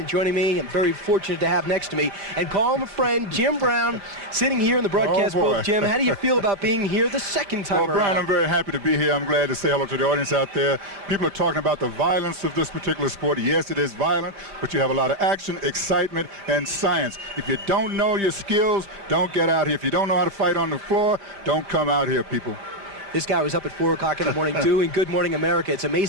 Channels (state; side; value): late; left; 5.0 ms